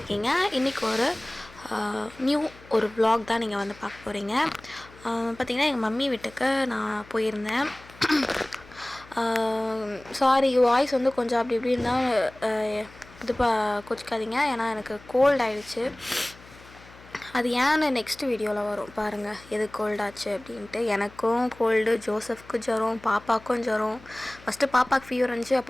இன்றைக்கி ஒரு vlog தான் நீங்கள் வந்து பார்க்க போகிறீங்க. பார்த்திங்கன்னா எங்கள் மம்மி வீட்டுக்கு நான் போயிருந்தேன். சாரி வாய்ஸ் வந்து கொஞ்சம் அப்படி இப்படி இருந்தால் இது கோச்சிக்காதீங்க. ஏன்னா எனக்கு கோல்ட் ஆகிடுச்சு. அது ஏன்னு நெக்ஸ்ட் வீடியோவில் வரும் பாருங்கள், எது கோல்டாச்சு அப்படின்ட்டு. எனக்கும் கோல்டு, ஜோசஃப்க்கு ஜுரம், பாப்பாவுக்கும் ஜுரம். ஃபஸ்ட்டு பாப்பாவுக்கு ஃபீவர் வந்துச்சு,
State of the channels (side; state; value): left; noise; hum, 22 dB below the sound